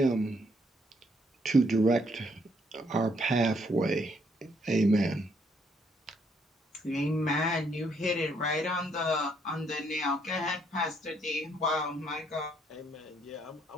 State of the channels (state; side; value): normal; both; correlation 0.70